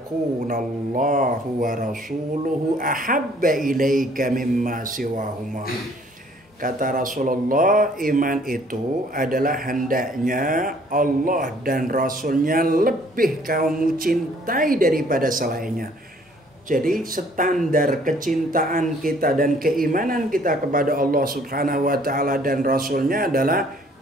wa rasuluhu ahabba ilaika mimma siwahuma. Kata Rasulullah, iman itu adalah hendaknya Allah dan Rasulnya lebih kamu cintai daripada selainnya. Jadi standar kecintaan kita dan keimanan kita kepada Allah Subhanahu wa taala dan Rasulnya adalah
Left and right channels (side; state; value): both; normal; correlation 0.59